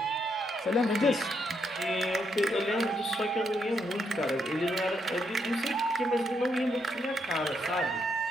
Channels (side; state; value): both; normal; correlation 0.78